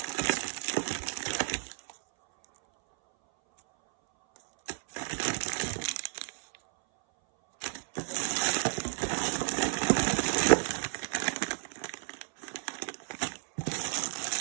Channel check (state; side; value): silent; left; 57 dB below the other